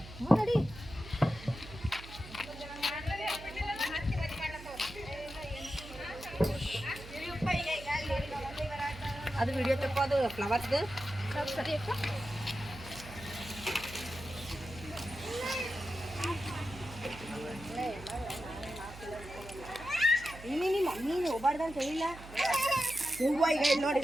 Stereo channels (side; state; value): right; noise; hum, 15 dB below the sound